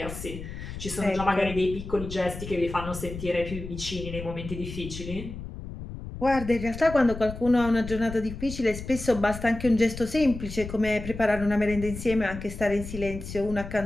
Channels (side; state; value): left; noise; rumble, 10 dB below the sound